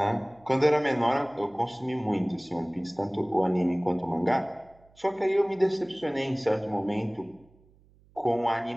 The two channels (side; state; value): right; noise; hum, 30 dB below the sound